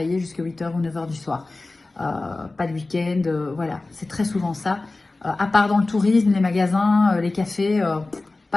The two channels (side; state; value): right; quieter; 3.2 dB